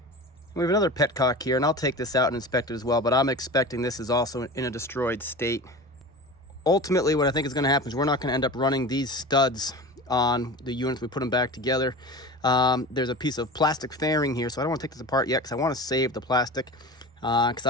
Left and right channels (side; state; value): both; normal; correlation 0.32